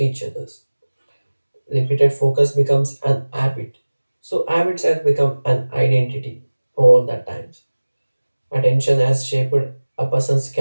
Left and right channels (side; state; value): both; inverted; correlation -1.00